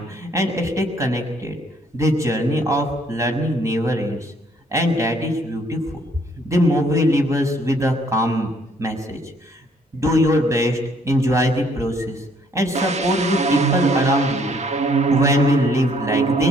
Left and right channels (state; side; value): normal; both; correlation 0.64